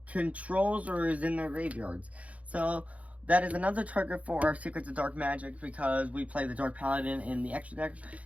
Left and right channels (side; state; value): left; late; 0.067 ms